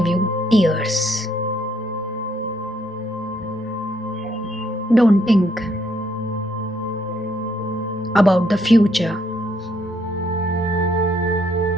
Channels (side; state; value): both; normal; correlation 0.71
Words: you tears. Don't think about the future.